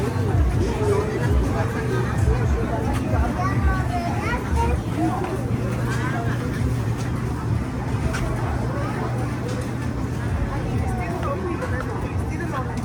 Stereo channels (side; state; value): both; identical; correlation 1.00